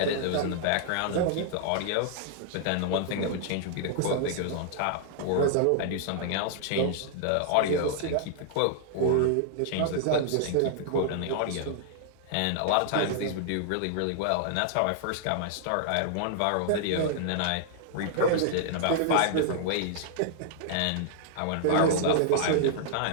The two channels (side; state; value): both; different; correlation -0.01